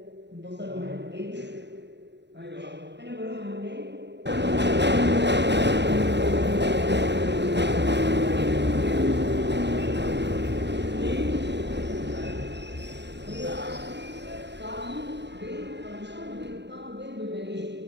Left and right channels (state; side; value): late; left; 0.51 ms